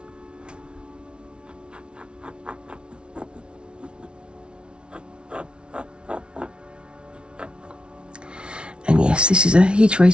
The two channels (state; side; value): late; left; 0.057 ms